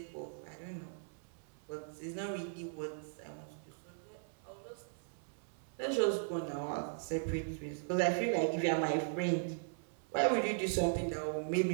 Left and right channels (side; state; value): left; silent; 52 dB below the other